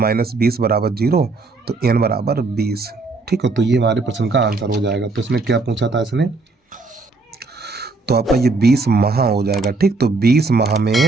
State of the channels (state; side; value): quieter; left; 3.7 dB